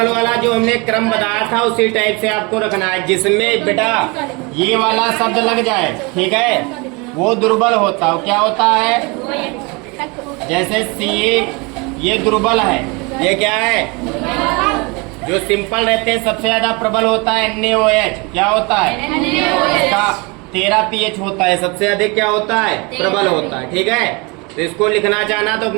वाला जो हमने क्रम बताया था उसी टाइप से आपको रखना है, जिसमें बेटा ये वाला शब्द लग जाए, ठीक है, वो दुर्बल होता है। क्या होता है? जैसे सी, ये दुर्बल है, ये क्या है? जो सिंपल रहते हैं सबसे ज्यादा प्रबल होता है NaOH। क्या होता है? इसका 13 pH होता है, सबसे अधिक क्या होता है? प्रबल होता है। ठीक है, तो इसको लिखना चाहना तो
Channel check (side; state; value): left; quieter; 28.2 dB